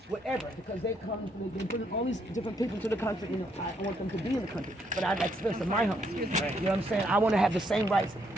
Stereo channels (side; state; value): both; normal; correlation 0.73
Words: whatever, because they bring all these different people to the country. You know, I want them to be in the country, but I'd like to live in my home. You know what I'm saying? I want to have the same rights